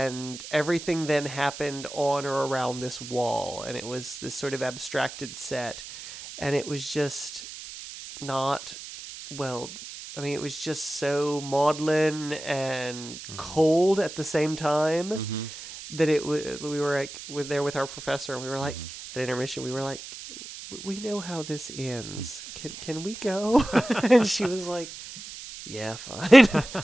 everything then happened on or around this wall, and it was this sort of abstracted set, and it was just not well. I mean, it was just so maudlin and cold at the same time that we were like there with our professor, and we were like at intermission, we were like, we know how this ends. Can we go? And she was like, yeah, fine.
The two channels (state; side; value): noise; right; hiss, 12 dB below the sound